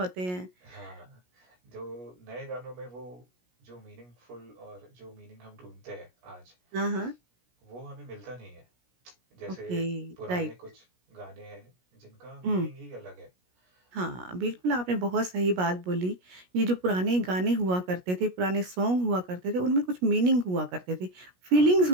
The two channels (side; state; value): left; late; 17 ms